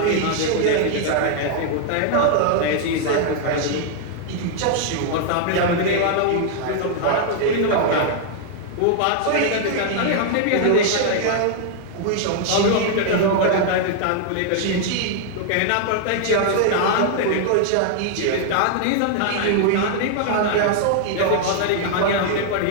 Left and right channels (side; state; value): both; different; correlation 0.00